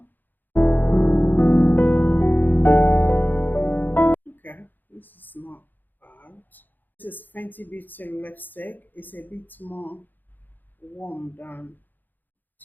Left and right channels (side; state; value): right; late; 0.088 ms